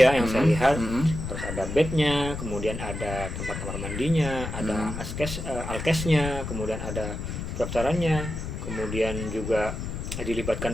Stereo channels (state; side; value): noise; left; rumble, 6 dB below the sound